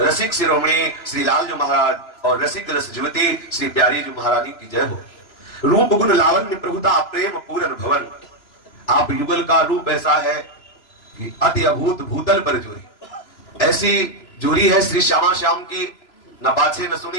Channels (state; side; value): late; right; 3.0 ms